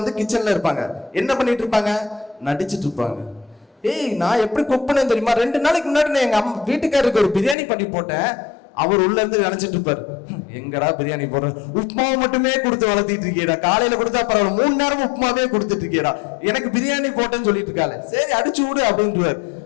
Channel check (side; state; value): right; drops out; at 7.6 s